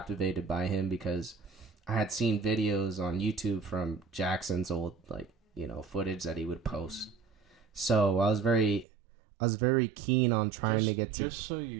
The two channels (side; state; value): left; drops out; at 8.8 s